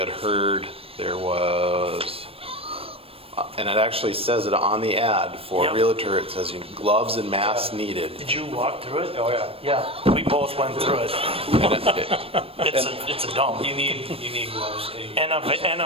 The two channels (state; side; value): late; left; 0.28 ms